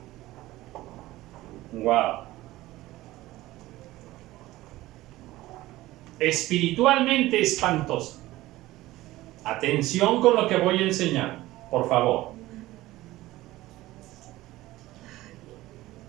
wow, espiritualmente espantosa. Atención con lo que voy a enseñar, por favor.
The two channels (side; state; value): left; quieter; 17.2 dB